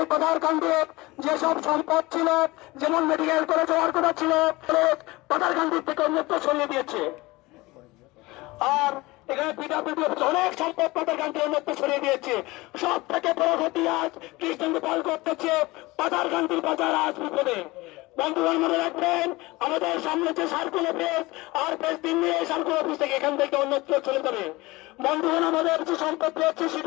পাঠারকান্দির যেসব সম্পদ ছিল, যেমন মেডিকেল কলেজ হওয়ার কথা ছিল, পাঠারকান্দির থেকে অন্যত্র সরিয়ে দিয়েছে। আর এখানে পিডাব্লিউডি অনেক সম্পদ পাঠারকান্দির অন্যত্র সরিয়ে দিয়েছে। সব থেকে বড় ক্ষতি আজ কৃষ্ণেন্দু পাল করতেছে পাঠারকান্দির বাজার আজ বিপদে। বন্ধুগণ, মনে রাখবেন, আমাদের সামনে যে সার্কুল অফিস আর 5 দিন নিয়ে সার্কুল অফিস থেকে এখান থেকে অন্যত্র চলে যাবে। বন্ধুগণ, আমাদের যে সম্পত্তি হচ্ছে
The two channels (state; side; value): quieter; right; 21.5 dB